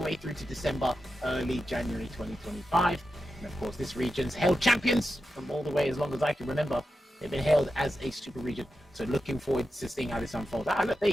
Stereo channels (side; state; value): both; normal; correlation 0.90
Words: way through to December, early January 2025. And of course, this region's held champions from all the way as long as I can remember. They've been hailed as a super region. So looking forward to seeing how this unfolds. Ah, look, there